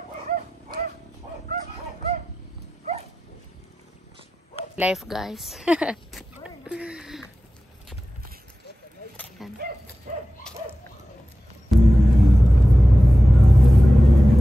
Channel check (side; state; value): both; normal; correlation 0.94